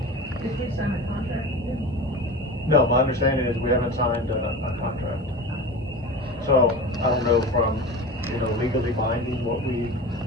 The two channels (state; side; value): normal; both; correlation 0.31